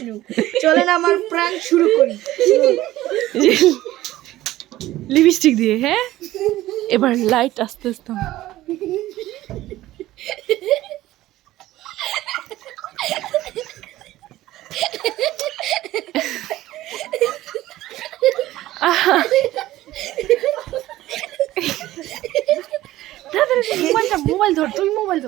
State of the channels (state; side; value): quieter; left; 15.7 dB